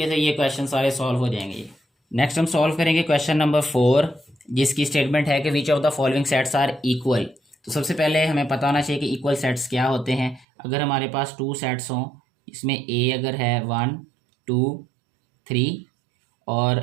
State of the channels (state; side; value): drops out; left; at 10.5 s